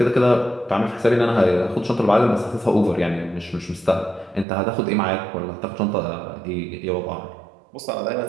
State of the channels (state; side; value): drops out; left; at 4.5 s